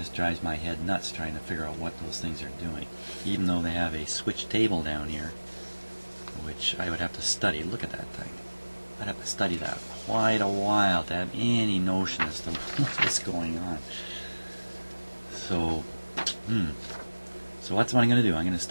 drives my head nuts trying to figure out what those things are doing, even though they have a switch table down here, which I would have to study. Look at that thing. I'd have to study that quite a while to have any notion as to what is going on. So, so that's what I'm going to do. I'm going to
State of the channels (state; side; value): inverted; both; correlation -1.00